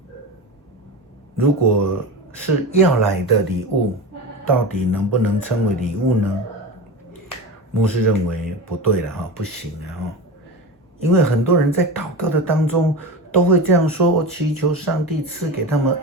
如果是要来的礼物，到底能不能称为礼物呢？牧师认为不对了，不行了。因为很多人在祷告的当中都会这样说，我祈求上帝赐给他们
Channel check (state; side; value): normal; both; correlation 0.26